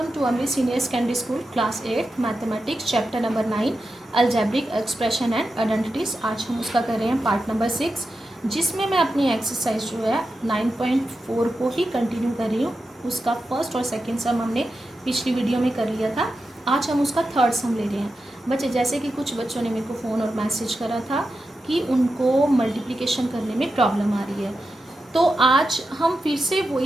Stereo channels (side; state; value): both; normal; correlation 0.90